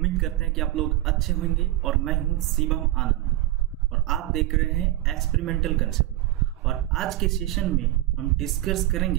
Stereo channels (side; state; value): left; quieter; 15.9 dB